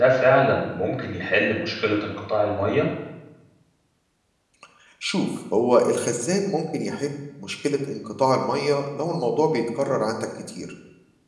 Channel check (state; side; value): identical; both; correlation 1.00